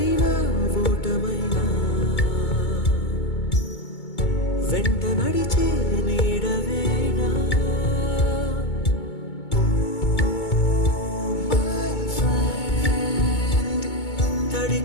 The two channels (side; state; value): right; late; 2.2 ms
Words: ఓటమైనా వెంట నడిచే నీడవేనా తడి